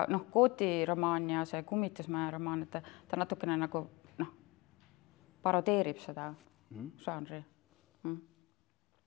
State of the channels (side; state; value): right; quieter; 24.8 dB